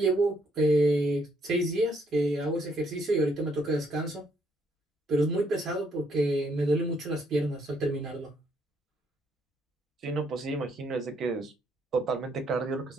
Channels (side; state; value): both; normal; correlation 0.71